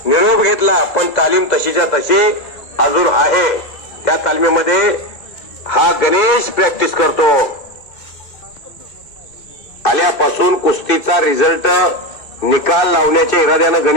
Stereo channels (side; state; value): right; late; 2.6 ms